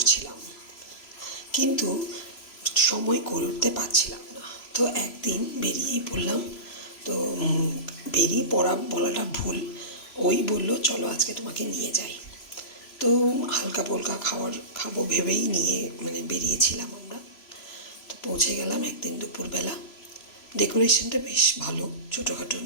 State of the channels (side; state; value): right; late; 3.0 ms